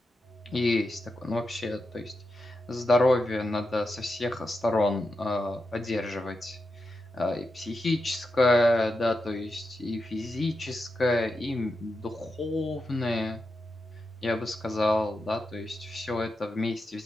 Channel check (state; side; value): normal; both; correlation 0.88